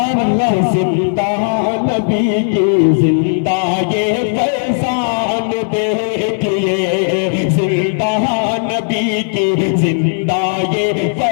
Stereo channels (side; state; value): right; silent; digital silence